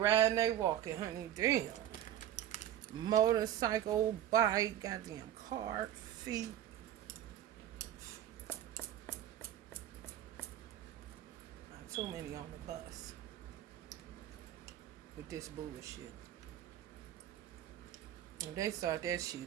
they walking, honey. Damn. Motorcycle, bike, goddamn car, feet. Not too many on the bus with this bullshit. When they start that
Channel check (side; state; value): left; quieter; 11.5 dB